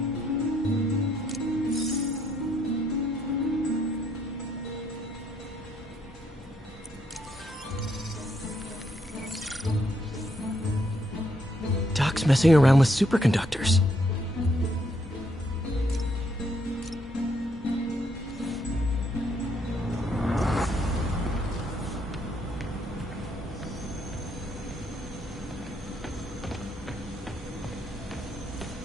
Doc's messing around with superconductors.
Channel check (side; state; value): both; normal; correlation 0.73